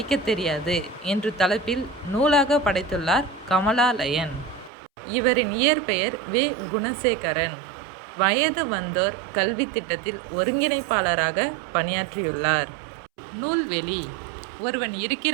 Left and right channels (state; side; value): drops out; left; at 4.7 s